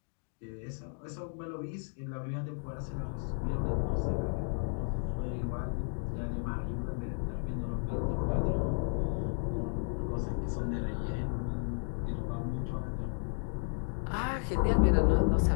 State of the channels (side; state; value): right; silent; 55 dB below the other